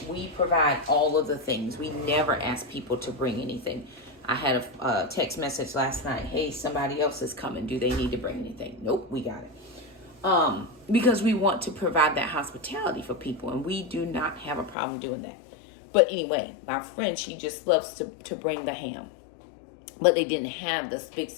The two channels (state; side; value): drops out; right; at 14.8 s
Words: we provide all of the things. We never ask people to bring anything. I had a text message last night. Hey, somebody else is coming. Do they need to bring anything? Nope, we got it. Because we want to provide that hospitality for people, and we do not have a problem doing that. But anyway, my friend, she just loves to bring the ham. But they didn't have the big